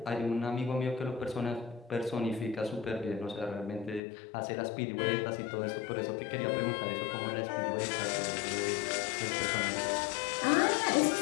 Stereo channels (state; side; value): drops out; right; at 4.0 s